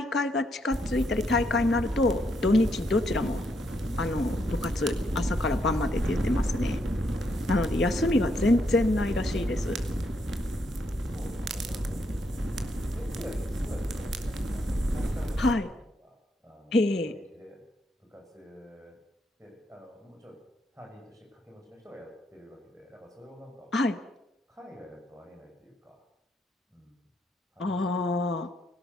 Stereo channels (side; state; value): both; normal; correlation 0.76